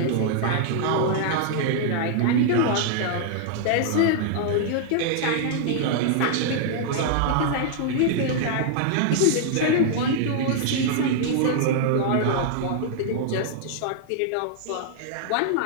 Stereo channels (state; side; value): different; both; correlation -0.01